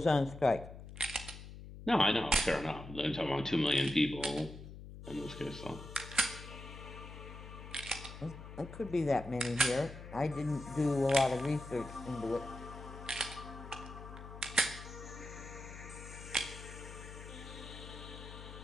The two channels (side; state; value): left; noise; hum, 13 dB below the sound